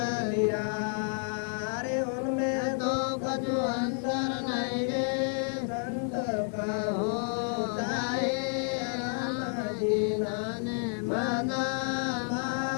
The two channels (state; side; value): silent; right; 58 dB below the other